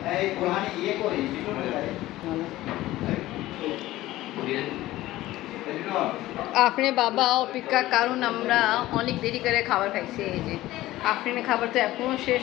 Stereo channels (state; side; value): quieter; right; 16.4 dB